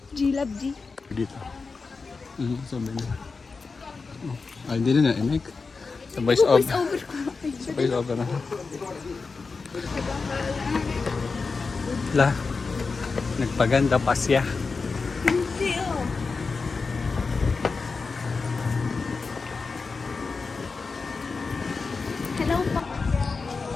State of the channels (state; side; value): quieter; right; 4.4 dB